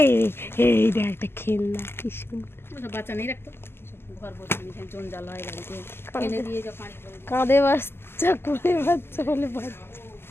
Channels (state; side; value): late; right; 0.12 ms